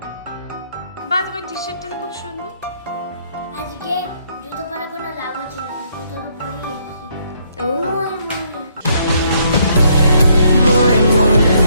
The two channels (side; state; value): both; inverted; correlation -0.70